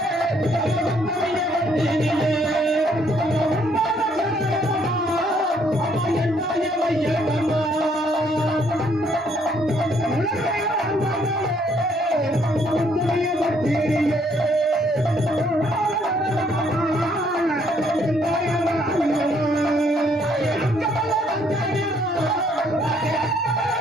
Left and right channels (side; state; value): both; normal; correlation 0.67